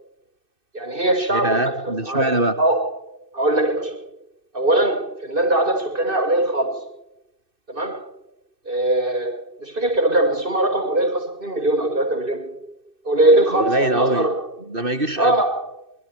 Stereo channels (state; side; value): late; left; 2.6 ms